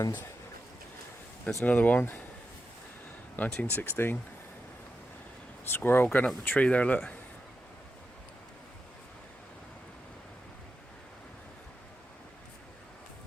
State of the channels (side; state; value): both; normal; correlation 0.89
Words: there's another one. 1916. Squirrel going up the tree there, look.